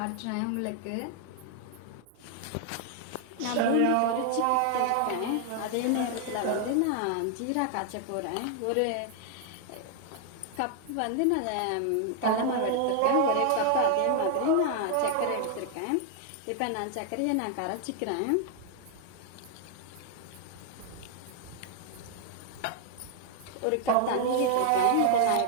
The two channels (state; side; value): different; both; correlation 0.00